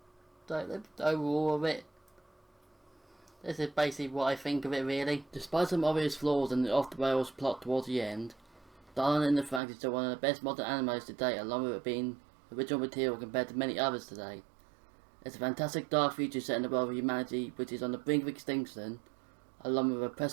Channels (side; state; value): left; drops out; at 9.6 s